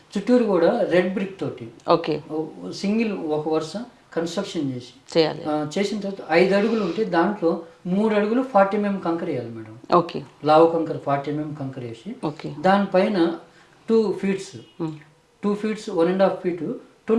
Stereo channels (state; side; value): identical; both; correlation 1.00